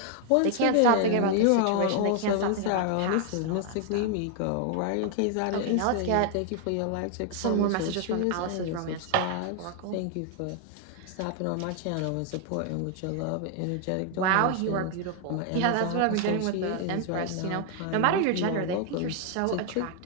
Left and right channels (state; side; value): different; both; correlation 0.00